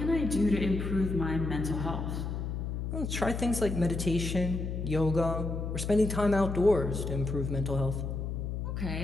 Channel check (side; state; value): left; noise; hum, 3 dB below the sound